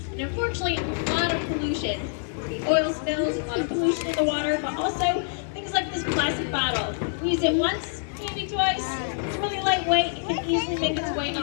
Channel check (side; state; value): right; silent; digital silence